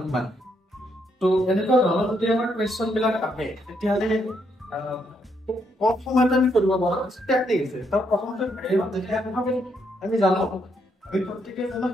কিমান তো এনেকুৱা ধৰণৰ যদি আমাৰ কোৱেশ্চন বিলাক আহে তেতিয়াহ'লে কম সময়তে আমি কৰিব পাৰো টেকনিক আছে তাৰ প্ৰথমতে আমি জানো আমি প্ৰত্যেককে জানো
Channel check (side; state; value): both; normal; correlation 0.76